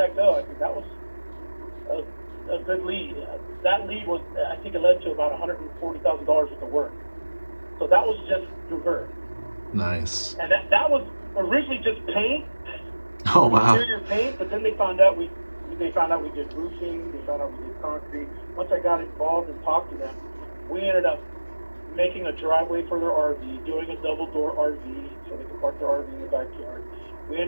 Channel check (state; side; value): inverted; both; correlation -1.00